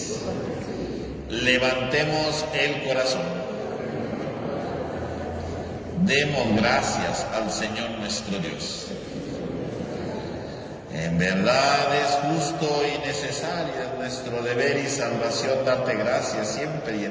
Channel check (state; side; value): identical; both; correlation 1.00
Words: Levantemos el corazón. Demos gracias al Señor nuestro Dios. En verdad es justo y necesario, es nuestro deber y salvación darte gracias siempre y